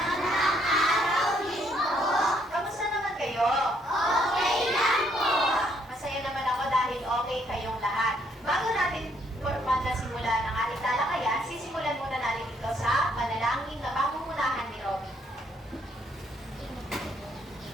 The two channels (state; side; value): normal; both; correlation 0.69